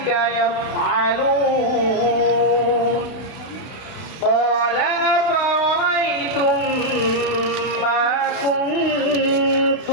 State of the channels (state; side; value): late; right; 32 ms